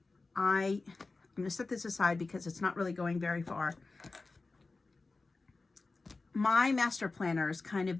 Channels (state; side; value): quieter; right; 3.7 dB